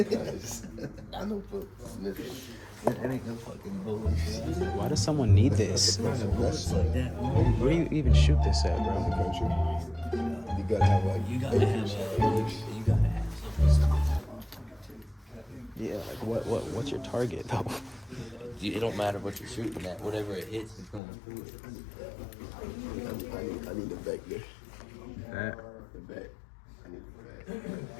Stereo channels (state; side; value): drops out; right; at 21.0 s